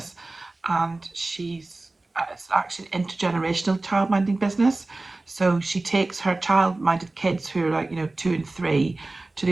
and it's actually an intergenerational childminding business. So she takes her child-minded kids who are like, 2 and 3 to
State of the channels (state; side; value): quieter; left; 3.1 dB